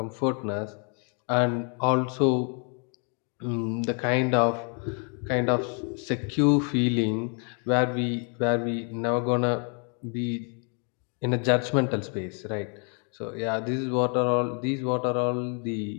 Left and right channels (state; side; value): quieter; right; 39.2 dB